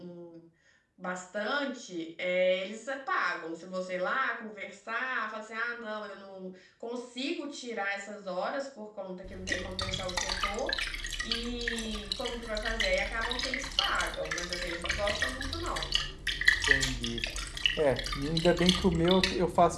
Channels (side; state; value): both; identical; correlation 1.00